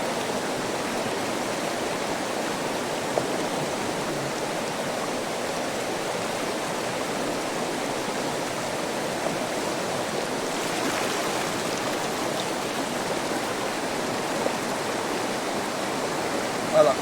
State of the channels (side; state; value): both; identical; correlation 1.00